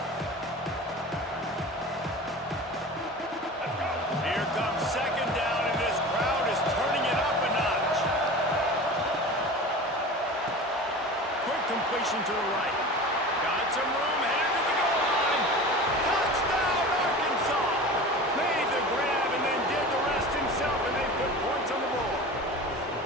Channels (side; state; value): both; normal; correlation 0.35